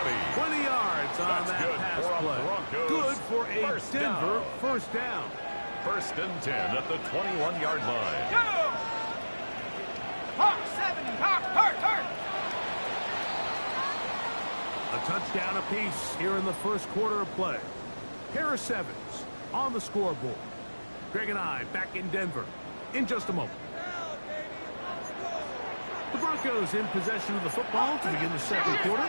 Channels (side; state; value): both; inverted; correlation -1.00